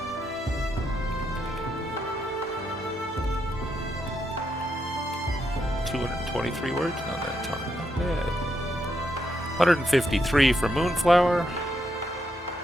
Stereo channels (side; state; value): both; normal; correlation 0.80